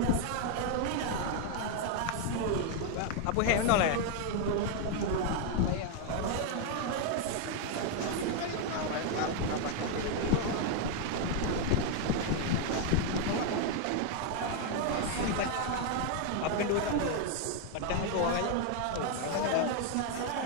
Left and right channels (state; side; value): different; both; correlation 0.00